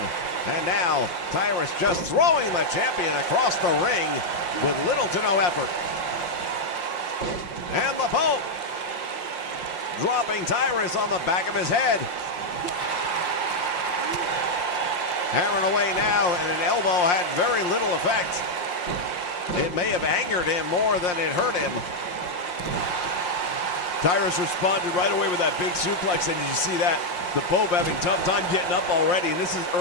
and now Tyrus just throwing the champion across the ring with little to no effort. And the Pope dropping Tyrus on the back of his head. Hammering away now, and an elbow had very little effect. It may have angered him more than it hurt him. Tyrus responded right away with that big suplex, and did you see that? The Pope having tough time getting up already, and this is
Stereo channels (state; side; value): late; right; 5.6 ms